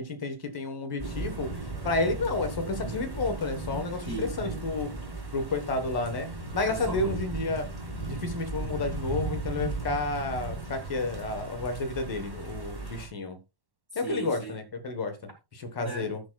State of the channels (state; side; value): late; left; 1.1 ms